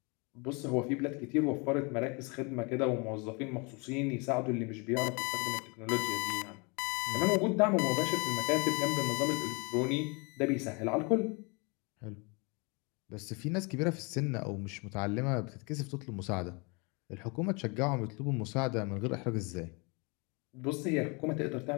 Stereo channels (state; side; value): quieter; right; 30.6 dB